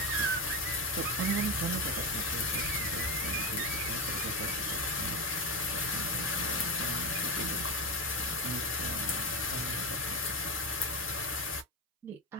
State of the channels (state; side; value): normal; both; correlation 0.15